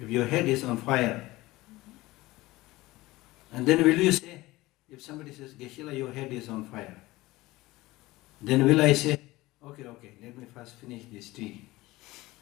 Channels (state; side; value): quieter; right; 19.2 dB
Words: if your head is on fire, and then will you say, if somebody says, Geshe, your head is on fire, then will I say, okay, let me first finish this tea?